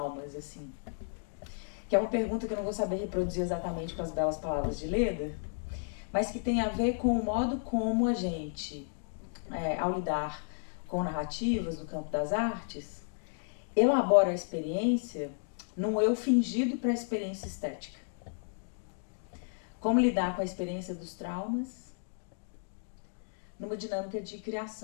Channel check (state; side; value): silent; right; digital silence